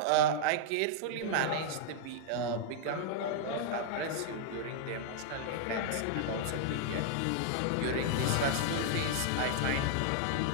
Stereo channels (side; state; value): both; different; correlation -0.01